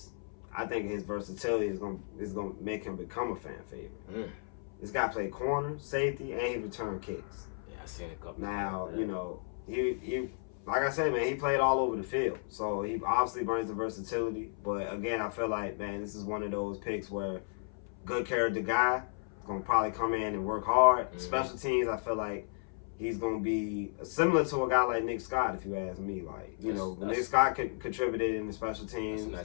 I think his versatility is gonna make him become a fan favorite. This guy played corner, safety, and he returned kicks. Yeah, I seen a couple. Now, you know, he like I said, man, he played all over the field, so he obviously brings the versatility. But again, I feel like, man, this is one of those picks where good character guy is gonna probably come in and work hard. Mm-hmm. Special teams, I feel like he's going to be similar to a guy like Nick Scott, if you ask me. Like, you know, Nick Scott contributed in the special teams. That's a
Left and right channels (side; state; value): right; silent; 55 dB below the other